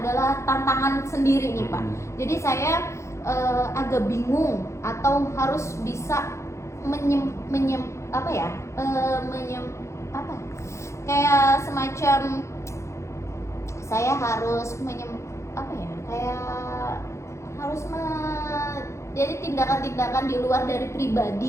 tantangan sendiri nih Pak. Jadi saya agak bingung atau harus bisa kayak semacam saya harus jadi tindakan-tindakan di luar dari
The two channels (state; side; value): late; right; 0.14 ms